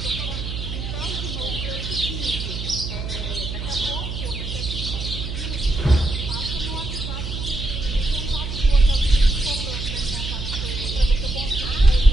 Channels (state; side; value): noise; right; hum, 6 dB below the sound